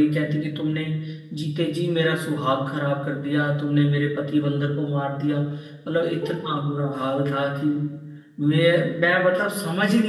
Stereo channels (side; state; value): both; identical; correlation 1.00